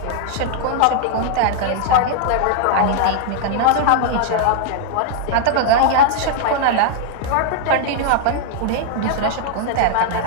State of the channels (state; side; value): different; both; correlation -0.01